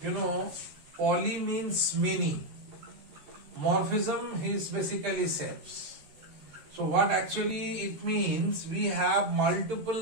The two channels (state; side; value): late; left; 13 ms